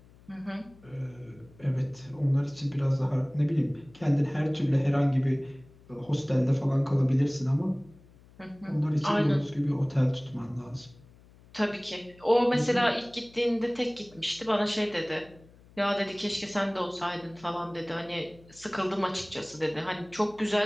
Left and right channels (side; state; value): left; noise; hum, 25 dB below the sound